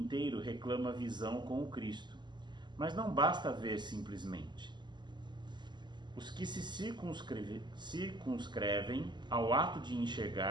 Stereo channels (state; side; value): late; left; 0.21 ms